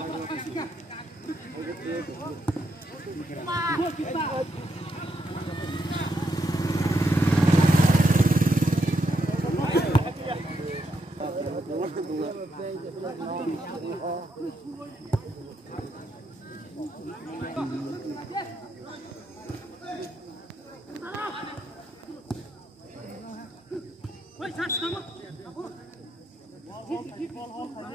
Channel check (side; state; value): both; normal; correlation 0.80